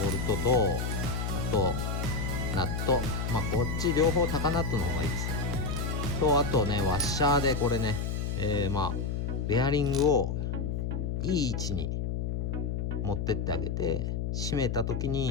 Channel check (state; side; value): noise; left; hum, 1 dB below the sound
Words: ルトと、あとナット、こっち両方高ナットの方がいいですよ。とあとね、ワッシャーでこれね、ベアリングをいい位置に持ってってあげて、締めた時